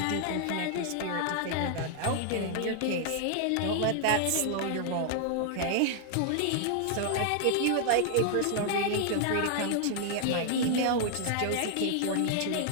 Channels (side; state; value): both; different; correlation 0.00